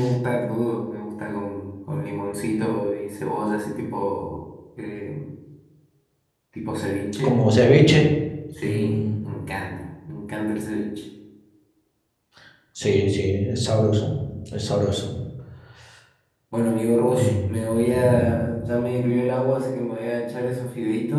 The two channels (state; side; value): identical; both; correlation 1.00